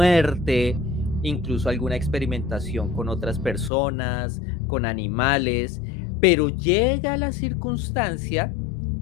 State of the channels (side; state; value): right; drops out; at 3.7 s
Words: incluso alguna experimentación con otras personas, con animales, pero llega la circunstancia